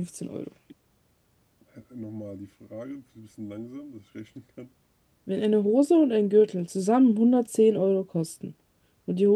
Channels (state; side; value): identical; both; correlation 1.00